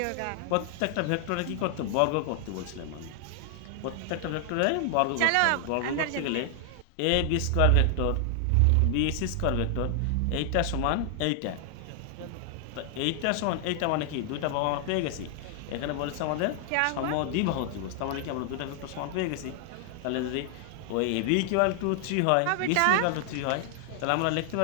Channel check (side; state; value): both; different; correlation 0.00